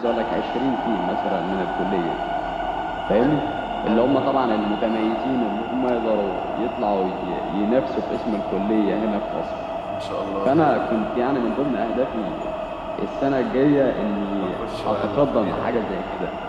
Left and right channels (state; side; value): identical; both; correlation 1.00